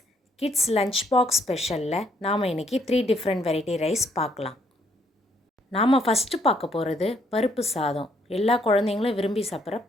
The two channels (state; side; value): normal; both; correlation 0.70